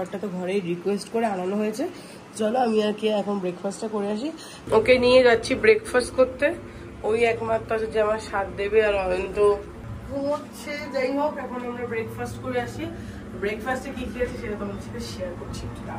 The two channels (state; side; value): identical; both; correlation 1.00